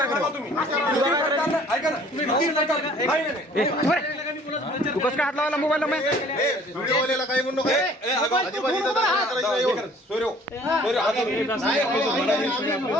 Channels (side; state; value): both; normal; correlation 0.54